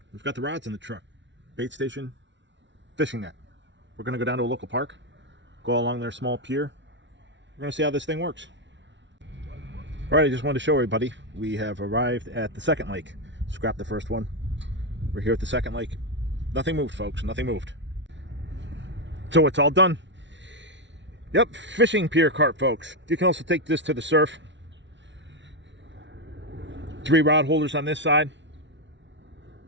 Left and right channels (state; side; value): late; left; 0.53 ms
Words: We've got the rods in the truck, bait station, fishing net. We're gonna go down to a local park, go along their small pier. We're gonna see how this thing works. All right, I just wanted to show everybody, we have arrived at the second lake. Scrapped the first one. We're here at the second lake. Nothing moved, folks, nothing moved. So it's all done. Yep, fishing pier cart, folks. You can also take this to the surf. 3 rod holders on this side.